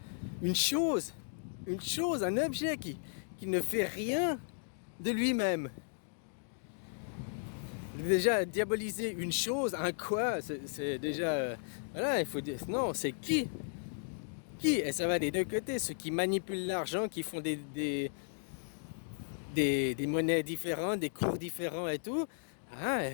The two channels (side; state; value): right; silent; digital silence